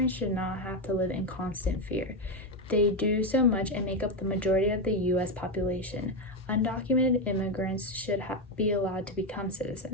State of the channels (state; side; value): normal; both; correlation 0.09